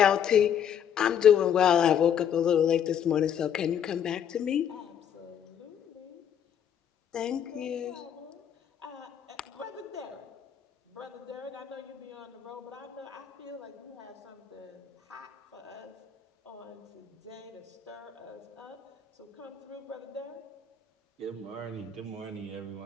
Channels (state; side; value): quieter; right; 8.6 dB